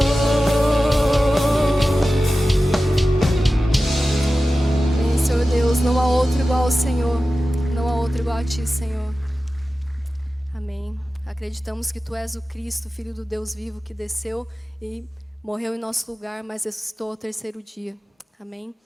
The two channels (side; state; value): both; normal; correlation 0.94